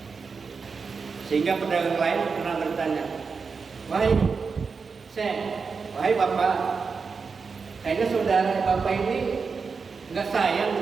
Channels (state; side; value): quieter; left; 5.1 dB